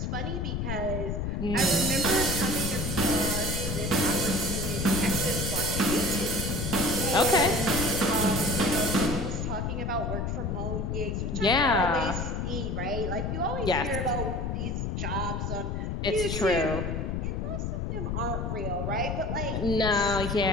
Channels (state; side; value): noise; left; rumble, 2 dB below the sound